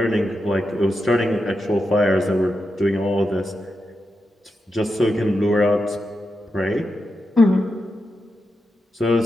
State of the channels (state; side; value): normal; both; correlation 0.87